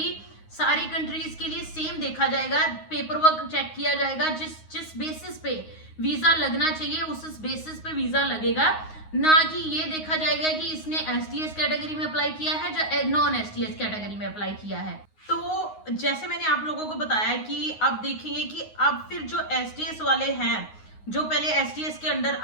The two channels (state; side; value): late; right; 9.5 ms